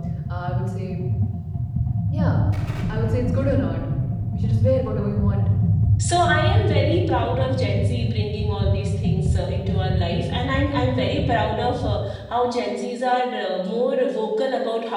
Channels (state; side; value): identical; both; correlation 1.00